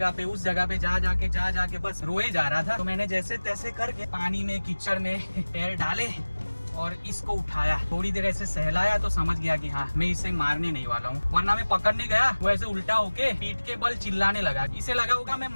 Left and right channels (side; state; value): both; inverted; correlation -1.00